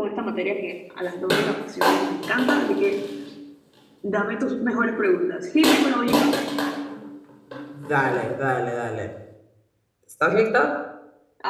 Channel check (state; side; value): identical; both; correlation 1.00